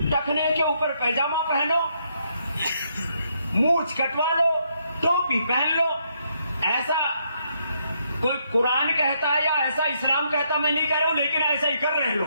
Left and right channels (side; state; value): both; inverted; correlation -0.75